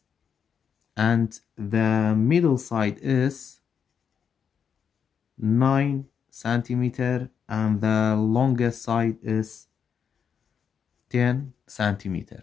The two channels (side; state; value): right; quieter; 7.2 dB